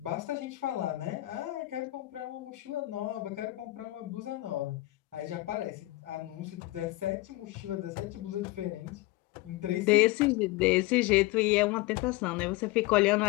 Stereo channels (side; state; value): right; quieter; 19.1 dB